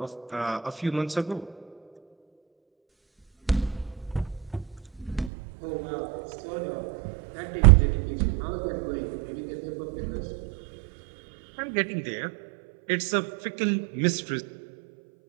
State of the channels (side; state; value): left; drops out; at 5.3 s